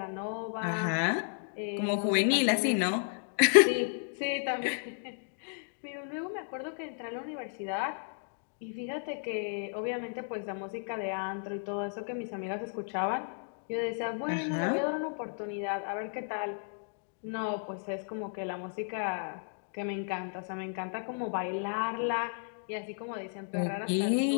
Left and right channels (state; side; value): silent; right; digital silence